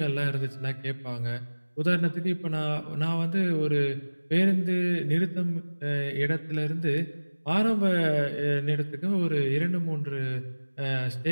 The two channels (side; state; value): both; inverted; correlation -1.00